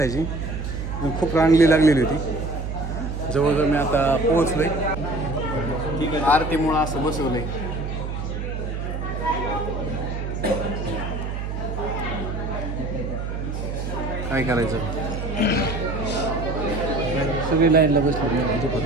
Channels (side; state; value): right; noise; hum, 4 dB below the sound